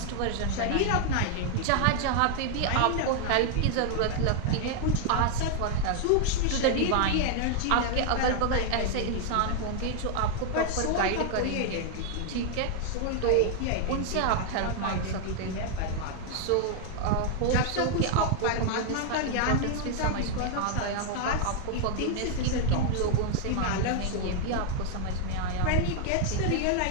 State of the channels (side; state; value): both; different; correlation 0.00